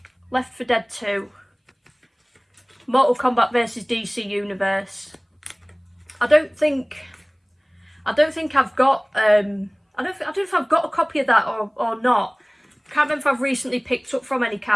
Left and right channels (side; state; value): both; identical; correlation 1.00